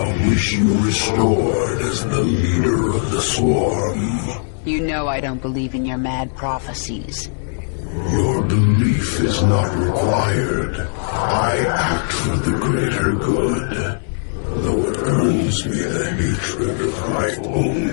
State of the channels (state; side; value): silent; right; 66 dB below the other